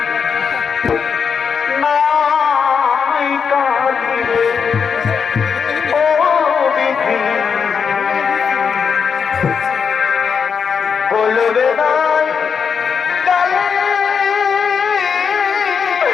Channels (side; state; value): right; quieter; 6.3 dB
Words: নাই কাঁদিলে ও বিধি, বলবে নাই কালে